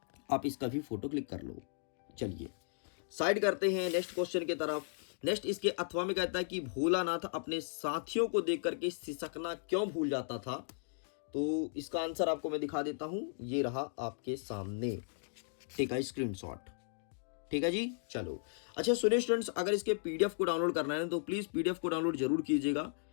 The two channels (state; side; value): silent; right; digital silence